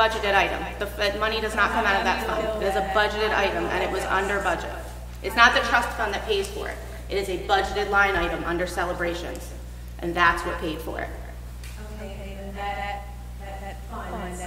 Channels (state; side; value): identical; both; correlation 1.00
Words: item. The money does not come out of that fund. It is a budgeted item, and it was under budget. It's not the trust fund that pays for it. It is a budgeted line item under celebrations, and that's what paid for it. Okay, and that fund,